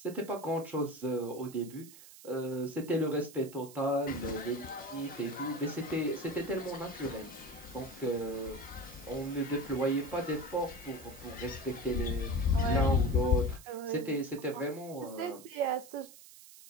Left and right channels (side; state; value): right; noise; hiss, 18 dB below the sound